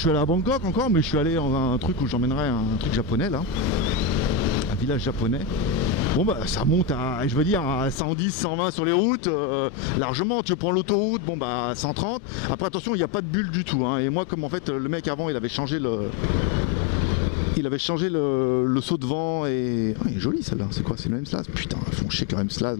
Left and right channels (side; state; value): right; drops out; at 8.0 s